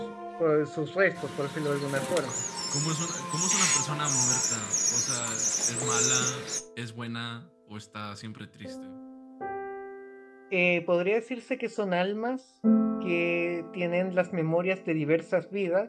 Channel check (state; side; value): identical; both; correlation 1.00